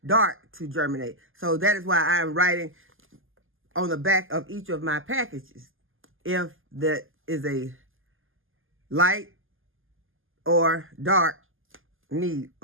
dark to germinate. So that is why I am writing on the back of each of my packages if that is a light or dark need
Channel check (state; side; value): late; left; 0.59 ms